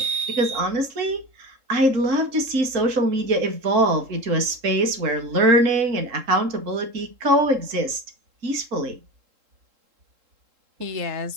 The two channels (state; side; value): late; left; 3.7 ms